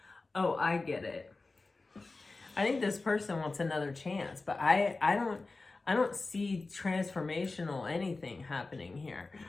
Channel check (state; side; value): quieter; right; 3.5 dB